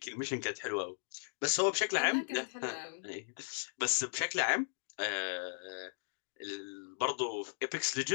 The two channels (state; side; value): silent; right; digital silence